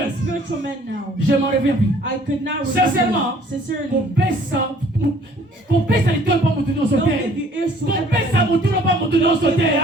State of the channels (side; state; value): both; normal; correlation 0.56